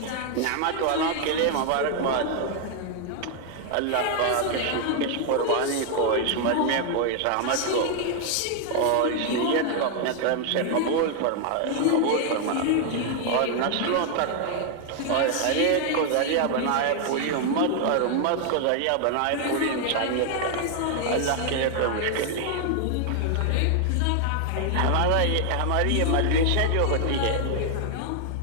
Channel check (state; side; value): different; both; correlation 0.00